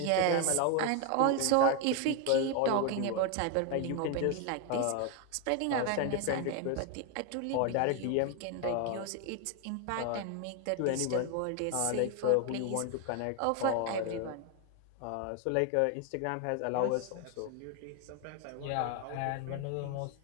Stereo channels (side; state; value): both; different; correlation 0.01